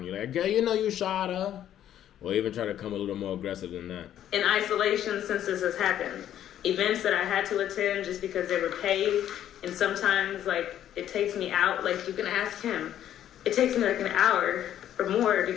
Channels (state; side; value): quieter; right; 11.1 dB